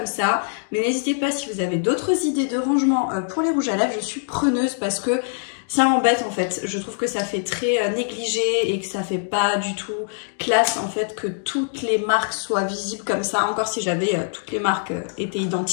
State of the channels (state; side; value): silent; right; digital silence